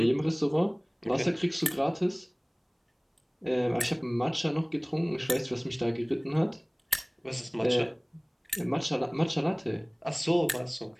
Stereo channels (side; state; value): both; identical; correlation 1.00